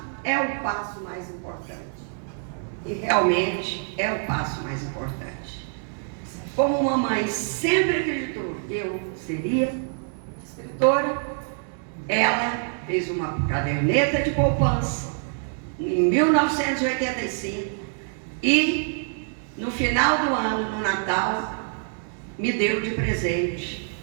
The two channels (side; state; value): left; silent; 61 dB below the other